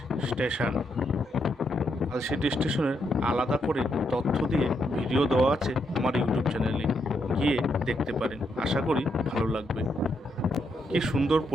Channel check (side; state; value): both; normal; correlation 0.79